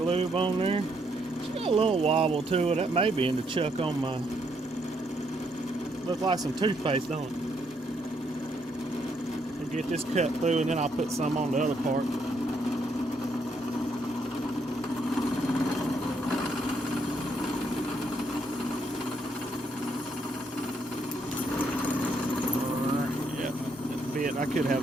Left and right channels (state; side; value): normal; both; correlation 0.74